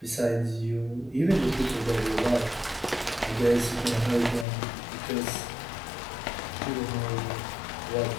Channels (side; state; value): right; drops out; at 4.5 s